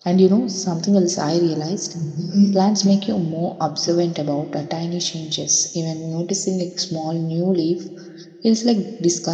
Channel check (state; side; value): identical; both; correlation 1.00